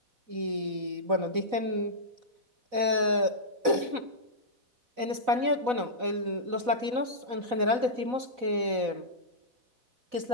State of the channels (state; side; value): late; left; 4.0 ms